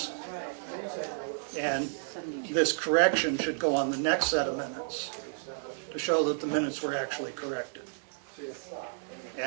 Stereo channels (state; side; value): silent; left; digital silence